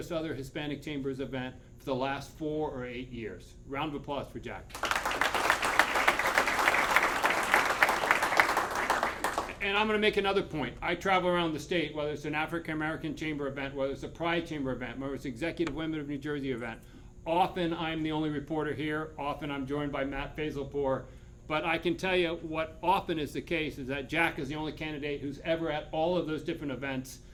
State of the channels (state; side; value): identical; both; correlation 1.00